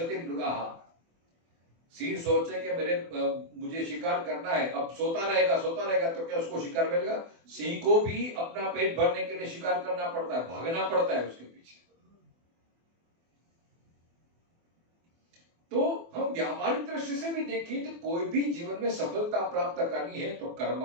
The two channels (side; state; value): left; late; 24 ms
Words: मृगाः। सिंह सोचे कि मुझे शिकार करना है, अब सोता रहेगा तो क्या उसको शिकार मिलेगा? सिंह को भी अपना पेट भरने के लिए शिकार करना पड़ता है, भागना पड़ता है उसके पीछे। तो हम व्यावहारिक दृष्टि से भी देखें तो कोई भी जीवन में सफलता प्राप्त करनी है तो